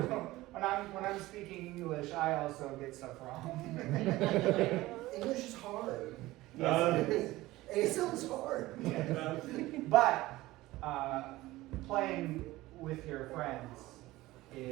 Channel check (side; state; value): left; quieter; 18.1 dB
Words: when I'm speaking English, I also get stuff wrong. English is hard. Yes, ASL is hard. but playing with your friends